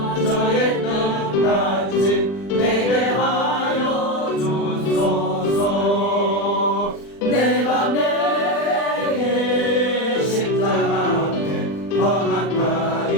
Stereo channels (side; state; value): right; late; 40 ms